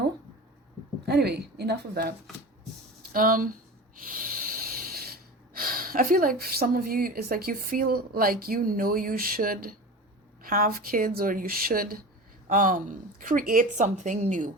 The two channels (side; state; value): both; normal; correlation 0.32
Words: Anyway, enough of that. I feel like some of you, it's like you feel like you should have kids, or you should create something new.